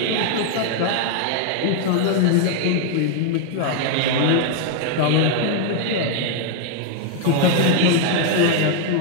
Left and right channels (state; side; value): different; both; correlation 0.00